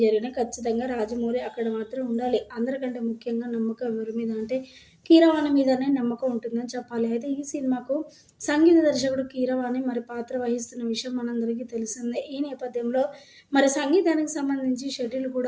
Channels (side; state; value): both; identical; correlation 1.00